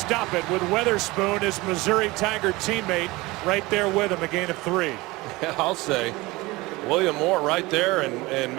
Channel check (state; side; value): quieter; left; 21.6 dB